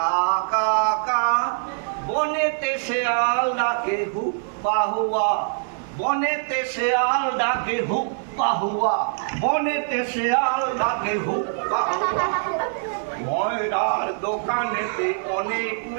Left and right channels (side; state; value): left; silent; 55 dB below the other